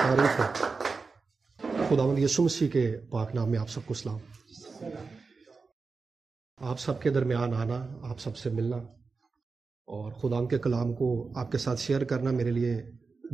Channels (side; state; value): left; quieter; 4.5 dB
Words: خداوند یسوع مسیح کے پاک نام میں آپ سب کو سلام. آپ سب کے درمیان آنا، آپ سب سے ملنا اور خدا کے کلام کو آپ کے ساتھ شیئر کرنا میرے لیے